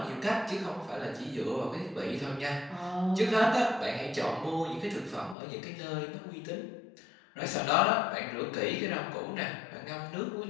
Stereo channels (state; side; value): drops out; right; at 5.4 s